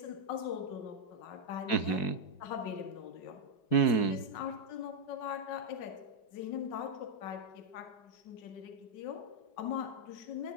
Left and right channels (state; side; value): late; right; 5.4 ms